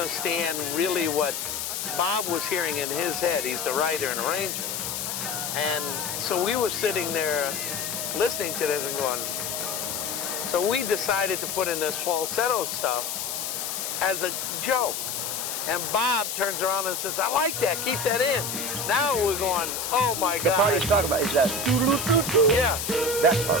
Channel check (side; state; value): left; noise; hiss, 3 dB below the sound